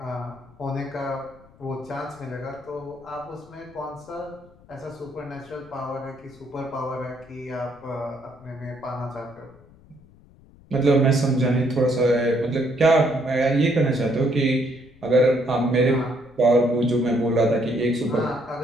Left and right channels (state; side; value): noise; left; rumble, 25 dB below the sound